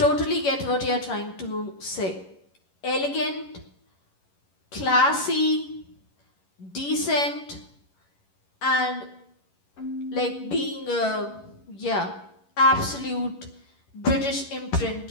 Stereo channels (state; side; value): late; right; 11 ms